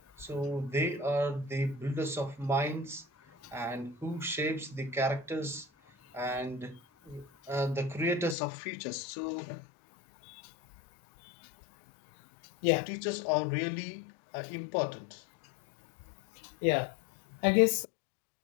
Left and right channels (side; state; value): right; drops out; at 8.3 s